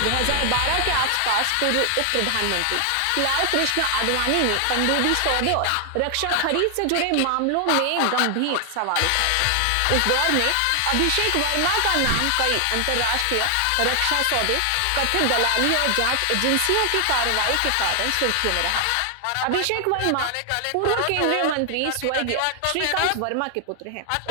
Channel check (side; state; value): both; different; correlation 0.00